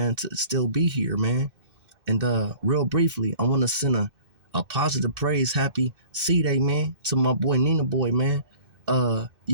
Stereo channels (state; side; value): late; left; 2.6 ms